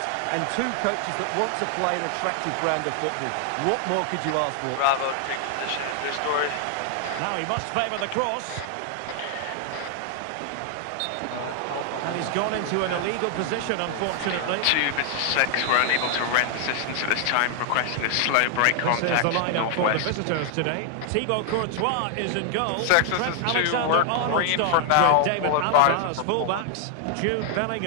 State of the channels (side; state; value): both; different; correlation 0.00